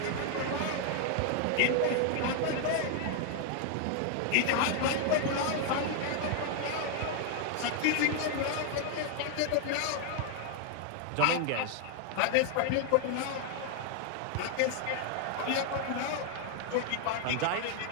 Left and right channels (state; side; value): different; both; correlation 0.00